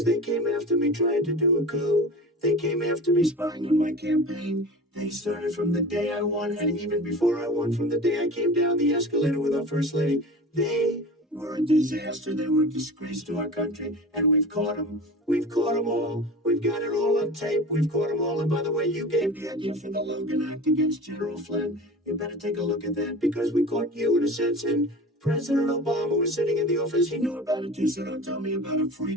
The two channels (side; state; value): both; normal; correlation 0.35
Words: they came after me trying to do a coup. They came after me spying on my campaign. They started from the day I won, and even before I won, from the day I came down the escalator with our First Lady. They were a disaster. They were a disgrace to our country, and we've caught them. We've caught them all. We've got it all on tape. We've caught them all. And by the way, you gave the idea for the Logan Act against General Flynn. You better take a look at that, because we caught you in a sense, and President Obama was sitting in the office. He knew about it too, so don't tell me about a free